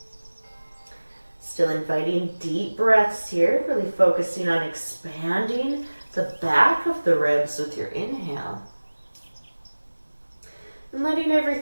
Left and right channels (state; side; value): inverted; both; correlation -1.00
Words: Still inviting deep breaths here, really focusing on expanding the back of the ribs with your inhale. And letting